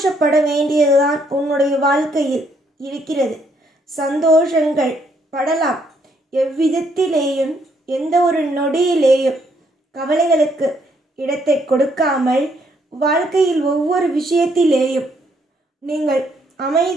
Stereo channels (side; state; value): both; normal; correlation 0.71